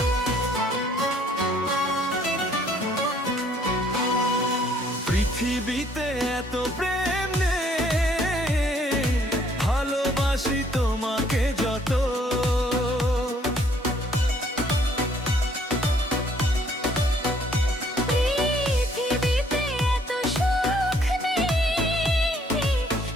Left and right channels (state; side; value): normal; both; correlation 0.64